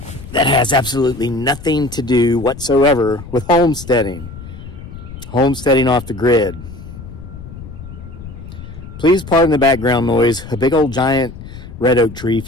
that has absolutely nothing to do whatsoever with homesteading. Homesteading off the grid. Please pardon the background noise. A big old giant red oak tree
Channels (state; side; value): noise; left; rumble, 14 dB below the sound